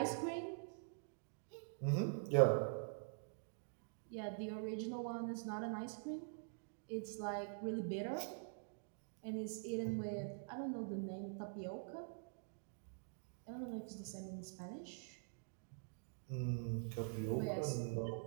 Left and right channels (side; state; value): left; silent; digital silence